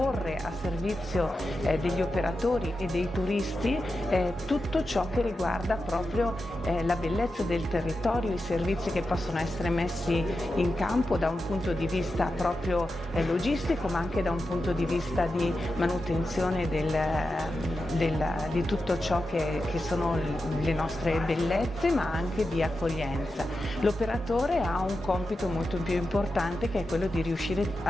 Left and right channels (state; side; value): normal; both; correlation 0.90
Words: a servizio degli operatori e dei turisti tutto ciò che riguarda proprio la bellezza del territorio, i servizi che possono essere messi in campo da un punto di vista proprio logistico, ma anche da un punto di vista di manutenzione di tutto ciò che sono le nostre bellezze, ma anche di accoglienza. L'operatore ha un compito molto più importante, che è quello di riuscire